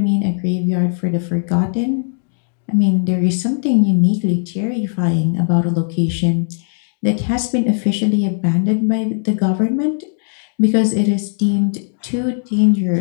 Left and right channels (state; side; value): silent; right; digital silence